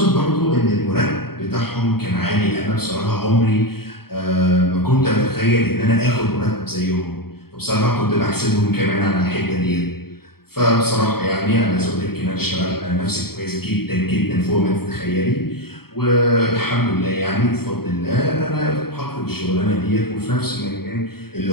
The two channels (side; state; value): right; late; 0.95 ms